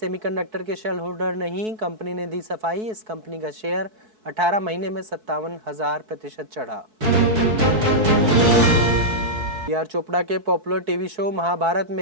के शेयर होल्डर नहीं, कंपनी ने दी सफाई। इस कंपनी का शेयर 18 महीने में 57,000% चढ़ा। पीआर चोपड़ा के पॉपुलर टीवी शो महाभारत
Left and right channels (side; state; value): left; late; 4.6 ms